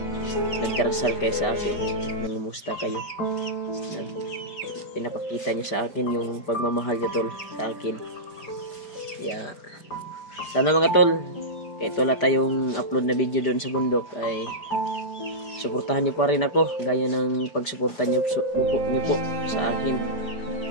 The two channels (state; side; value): late; right; 5.0 ms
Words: nagdarasal kayo sa akin, nangumusta kayo, pinapakita nyo sa akin yung pagmamahal nyo tol sa akin. Sana mga tol, kahit wala tayong upload na video doon sa bundok ay suportahan nyo pa rin ako gaya ng pagsuporta nyo po sa akin.